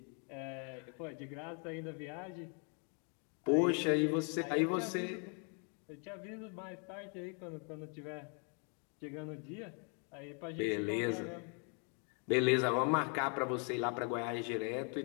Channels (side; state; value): right; quieter; 38.8 dB